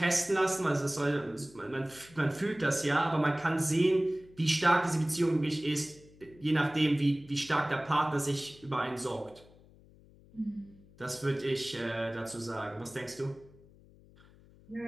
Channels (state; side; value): noise; left; hum, 25 dB below the sound